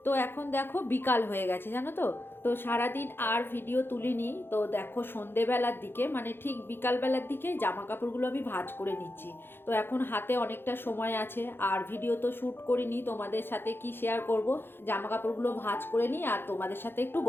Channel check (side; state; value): right; late; 0.10 ms